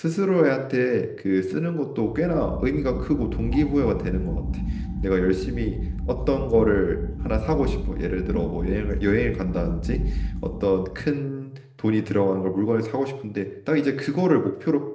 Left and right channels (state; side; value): identical; both; correlation 1.00